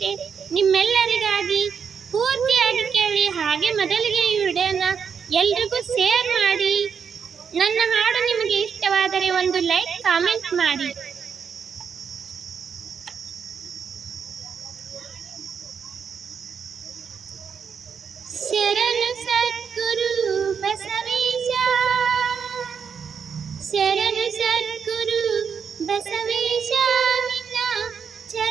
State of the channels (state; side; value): quieter; left; 6.7 dB